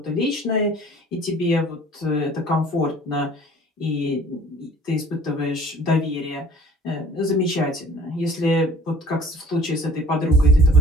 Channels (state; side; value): normal; both; correlation 0.50